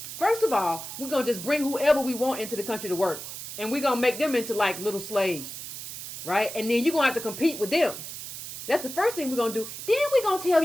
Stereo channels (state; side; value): noise; right; hiss, 9 dB below the sound